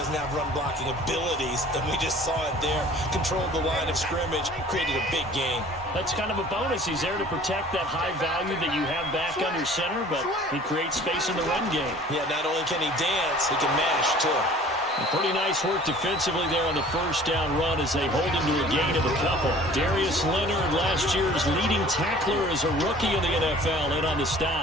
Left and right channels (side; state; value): both; normal; correlation 0.49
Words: have run-blocking abilities, and we just saw it there. Controlled the line of scrimmage, created a big gain. That's kind of a bonus. He's there to protect that high value that you have back under center, but he creates space in the run game. Yeah, not only can he dance, he can mash, too. Pretty nice work defensively there on the first down run as they hold him to a gain of a couple. Darius Leonard, last year's leading tackler as a rookie in the NFL, in on the